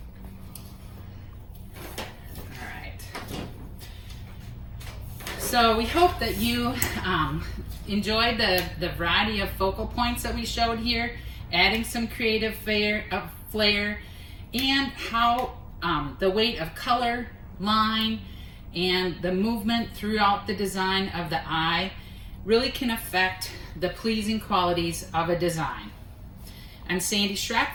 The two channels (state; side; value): identical; both; correlation 1.00